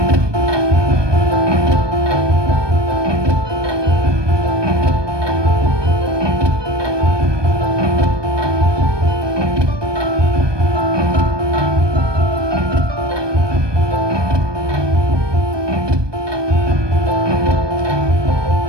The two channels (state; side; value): late; left; 1.2 ms